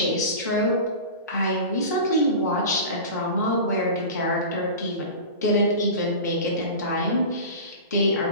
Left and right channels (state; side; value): inverted; both; correlation -0.31